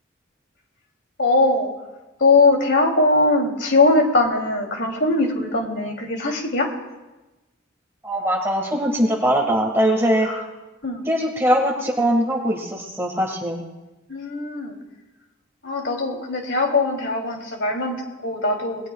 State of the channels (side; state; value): both; normal; correlation 0.02